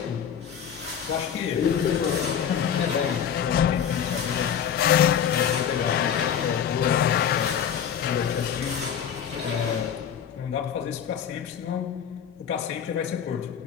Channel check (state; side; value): quieter; right; 8.3 dB